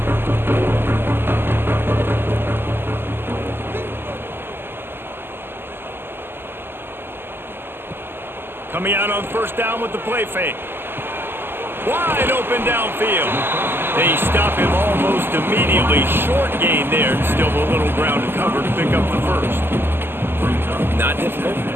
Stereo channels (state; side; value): late; left; 0.10 ms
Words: Coming out on first down with the play fake. Wide open downfield. They stop him almost immediately. Short gain there. Still a little ground to cover to pick up the first. Not difficult,